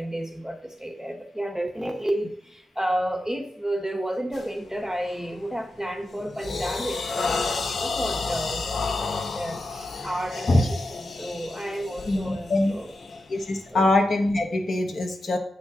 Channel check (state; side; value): normal; both; correlation 0.90